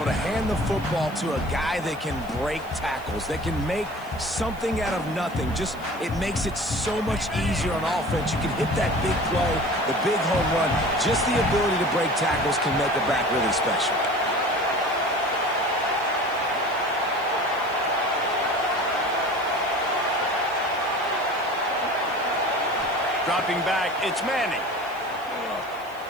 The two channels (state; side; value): noise; right; hiss, 24 dB below the sound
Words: to hand the football to a guy that can break tackles, that can make something out of nothing. Just, it makes it so much easier on offense. You can hit that big play, the big home run. Just the ability to break tackles can make a back really special. Dropping back, it's Manning.